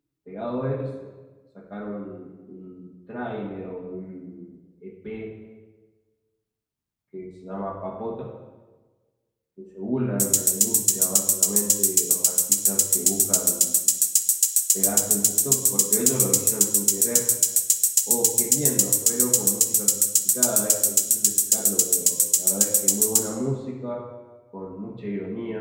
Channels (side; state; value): both; identical; correlation 1.00